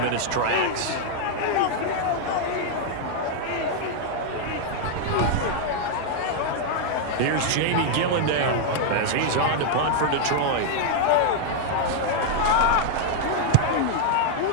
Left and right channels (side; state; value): both; different; correlation 0.00